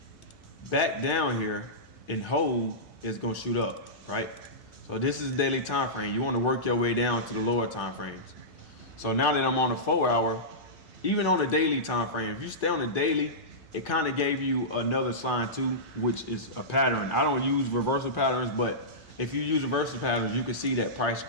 back down here and hold, it's gonna shoot up, right? So this is daily time frame. You want to work your way down to the lower time frames. So now that I'm on the 4 hour, even on the daily time frame, if you stay on the daily, it kind of gave you another sign too, which is a pattern. I don't use reversal patterns, but if you use reversal patterns, you can see that price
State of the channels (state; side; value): normal; both; correlation -0.16